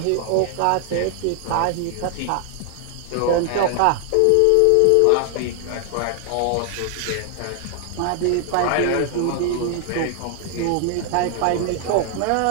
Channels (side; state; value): both; different; correlation 0.00